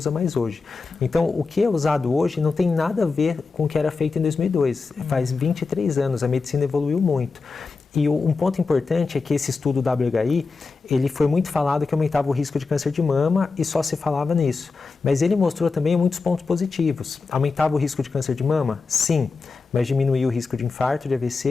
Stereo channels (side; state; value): right; quieter; 4.3 dB